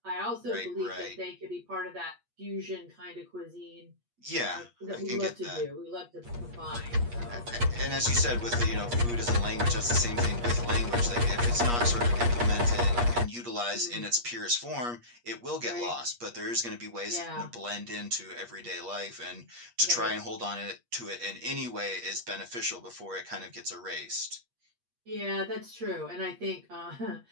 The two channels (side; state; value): left; late; 8.4 ms